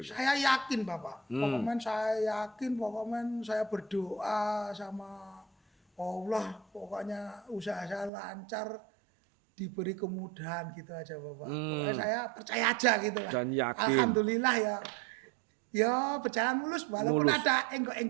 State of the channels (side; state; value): left; drops out; at 8.1 s